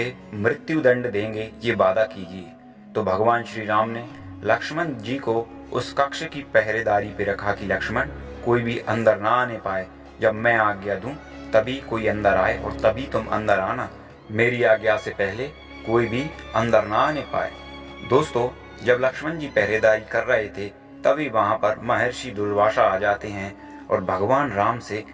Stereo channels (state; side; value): identical; both; correlation 1.00